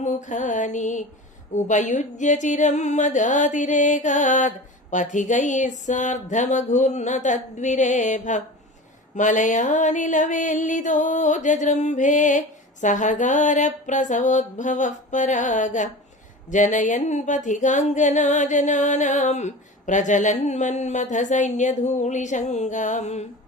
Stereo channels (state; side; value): normal; both; correlation 0.33